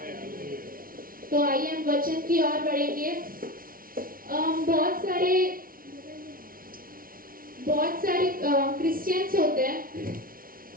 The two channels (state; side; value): late; left; 0.42 ms